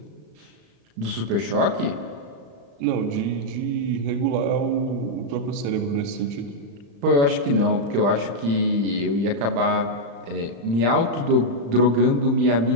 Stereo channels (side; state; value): left; late; 35 ms